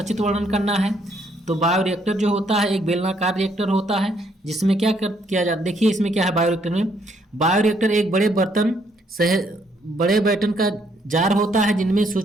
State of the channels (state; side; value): normal; both; correlation 0.70